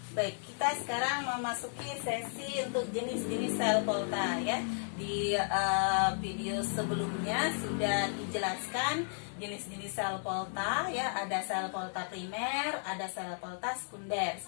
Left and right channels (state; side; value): silent; right; 55 dB below the other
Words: Baik, kita sekarang memasuki sesi untuk jenis-jenis sel Volta ya. Di video sebelumnya sudah dijelaskan jenis-jenis sel Volta ya. Ada sel Volta primer, ada sel Volta sekunder.